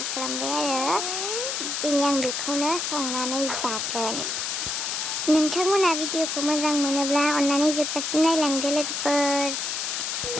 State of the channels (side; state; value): left; noise; hiss, 2 dB below the sound